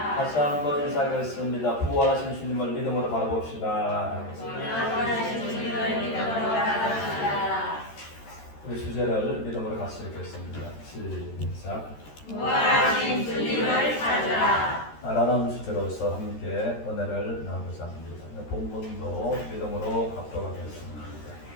다시 한번 인사하겠습니다. 부활하신 주님을 믿음으로 바라봅시다. 우리 주제를 믿음으로 같이 읽겠습니다. 시작. 부활하신 주님을 찾으라. 라는 주제로서 함께 은혜를 나누고자 합니다. 본문도 믿음으로 갖도록 하겠습니다.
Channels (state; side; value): late; right; 13 ms